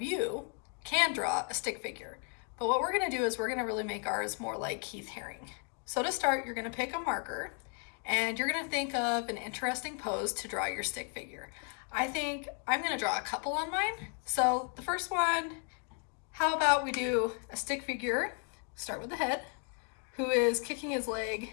you can draw a stick figure, but what we're gonna do is we're gonna really make ours more like Keith Haring. So to start, you're gonna pick a marker and you're gonna think of an interesting pose to draw your stick figure. I think I'm gonna draw a couple on mine. So the first one, how about we do a stick figure, start with the head, who is kicking his leg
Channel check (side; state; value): right; quieter; 38.3 dB